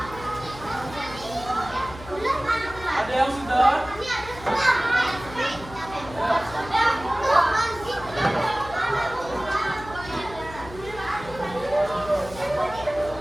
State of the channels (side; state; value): left; noise; hum, 15 dB below the sound